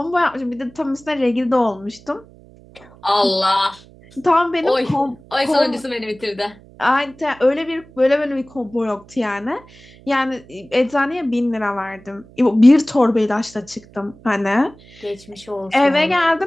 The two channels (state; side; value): noise; right; hum, 24 dB below the sound